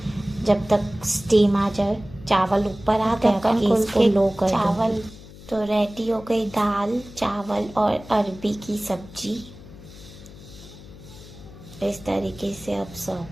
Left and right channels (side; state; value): left; noise; hum, 18 dB below the sound